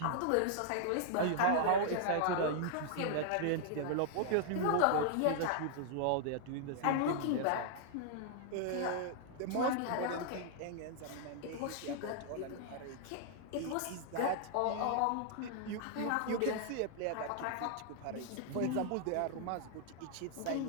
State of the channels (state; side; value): different; both; correlation -0.01